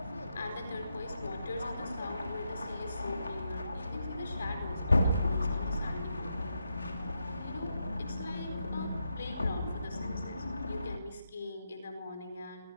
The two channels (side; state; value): both; inverted; correlation -0.84